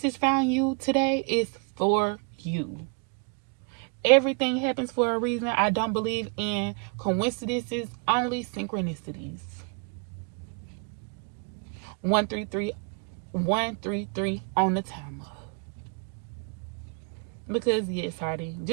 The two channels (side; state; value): left; quieter; 36.8 dB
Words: found you today, it's for you. Everything happens for a reason. I don't believe in coincidences, only synchronicities. 133, 133 on the timer. Because yes, Hardy,